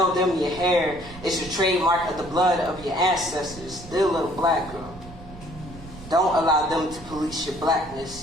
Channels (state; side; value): noise; right; rumble, 17 dB below the sound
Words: them your hair is your trademark of the blood of your ancestors. Dear little black girl, don't allow them to police your